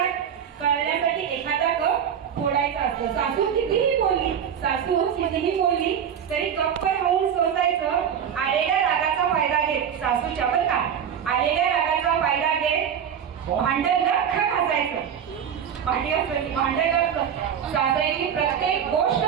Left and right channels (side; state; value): left; quieter; 8.3 dB